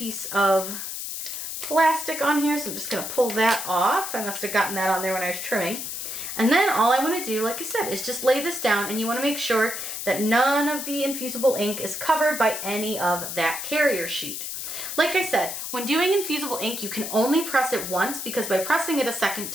of plastic on here, so I'm just going to pull that off. I must have gotten that on there when I was trimming. And then all I want to do, like I said, is just lay this down, and you want to make sure that none of the infusible ink is covered by any of that carrier sheet. Like I said, when doing infusible ink, you can only press it once, because by pressing it a second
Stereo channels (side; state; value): left; noise; hiss, 6 dB below the sound